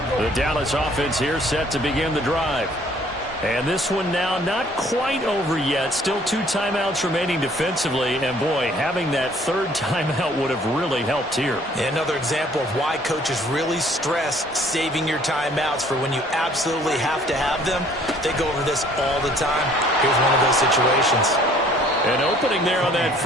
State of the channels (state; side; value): normal; both; correlation 0.58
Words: The Dallas offense here set to begin the drive. And this one now not quite over yet. Still 2 timeouts remaining defensively. And, boy, having that 3rd timeout would have really helped here. Another example of why coaches really stress saving your timeouts for when you absolutely have to have them. They go over this all the time. Here's one of those situations. An opening there on that